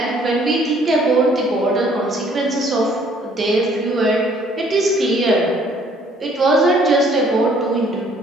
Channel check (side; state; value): both; normal; correlation 0.61